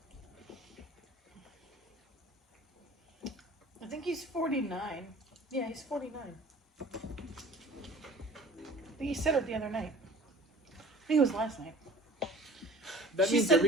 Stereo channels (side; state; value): both; normal; correlation 0.46